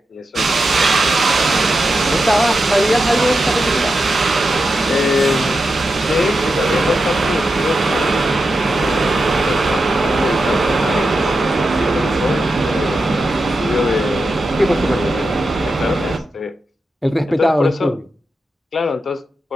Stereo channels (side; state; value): both; normal; correlation 0.88